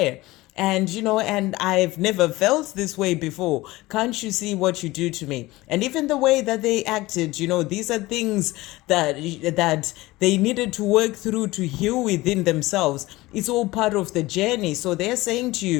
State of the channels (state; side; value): quieter; right; 19.5 dB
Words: And, and I've never felt this way before. Can't you see what you do to me? And even the way that they acted, these are things that they needed to work through to heal within themselves. It's all part of the journey. So they're saying to